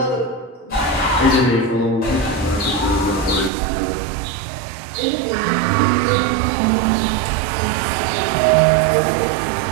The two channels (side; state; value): left; drops out; at 3.5 s